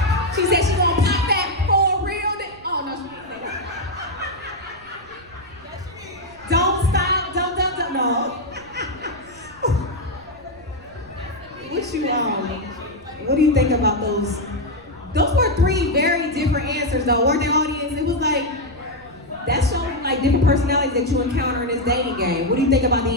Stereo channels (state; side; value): noise; right; rumble, 25 dB below the sound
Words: She said she gonna pop that for real. Oh no, she didn't say that. Don't What do you think about those? Those were three very different answers, though, weren't they, audience? It was like, that showed like different personalities that you encounter in this dating game. What do you think about the